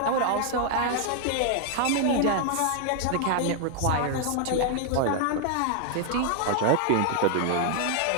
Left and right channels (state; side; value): different; both; correlation 0.00